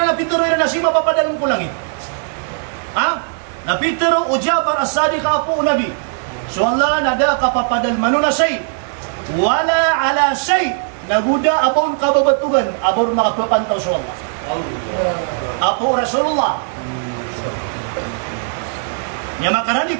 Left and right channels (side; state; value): left; silent; digital silence